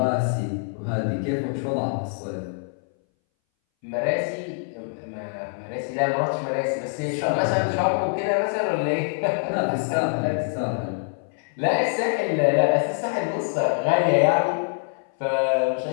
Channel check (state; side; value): silent; right; 61 dB below the other